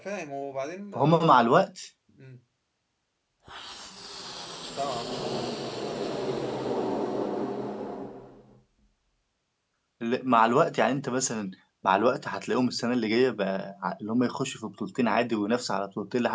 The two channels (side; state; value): both; identical; correlation 1.00